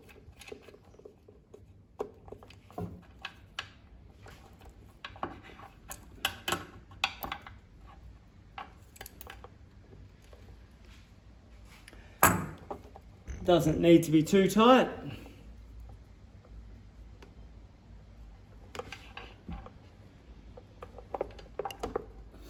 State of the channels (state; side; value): identical; both; correlation 1.00